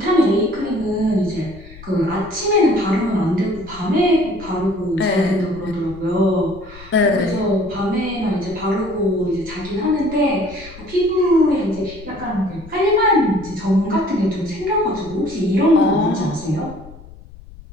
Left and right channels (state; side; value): noise; left; rumble, 19 dB below the sound